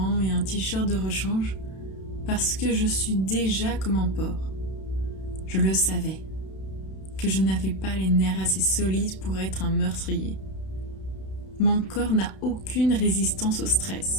et un t-shirt de rechange, parce que je suis déjà comme un porc. Je le savais, que je n'avais pas les nerfs assez solides pour être un meurtrier. Mon corps n'a aucune résistance au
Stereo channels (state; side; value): late; right; 32 ms